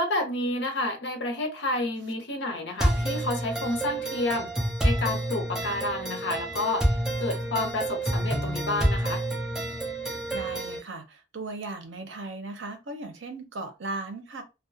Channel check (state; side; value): normal; both; correlation 0.50